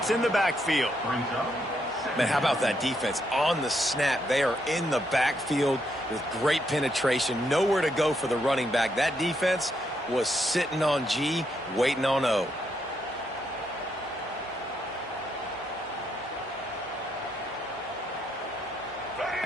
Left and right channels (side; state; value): both; normal; correlation 0.77